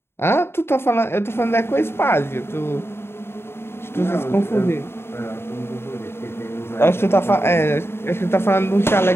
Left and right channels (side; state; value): right; late; 0.12 ms